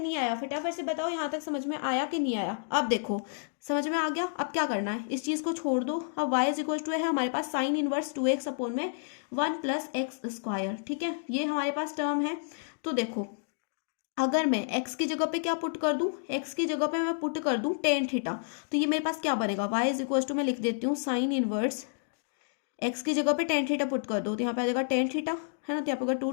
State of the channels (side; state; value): right; silent; digital silence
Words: आया, फटाफट से बताओ यहाँ तक समझ में आया कि नहीं आया। अब देखो समझ में आ गया। अब क्या करना है, इस चीज को छोड़ दो। अब y इज इक्वल टू है हमारे पास साइन इनवर्स 2x अपॉन में 1 प्लस एक्स स्क्वायर, ठीक है। ये हमारे पास टर्म है। तो देखो अगर मैं x की जगह पे क्या पुट कर दूं, x की जगह पे मैं पुट कर दूं टेन थीटा, तो ये मेरे पास क्या बनेगा, y इज इक्वल टू मैं लिख देती हूँ साइन इनवर्स x की जगह पे टेन थीटा पुट कर दो तो यहाँ पे आ जाएगा टेन थीटा, है ना। तो यहाँ पे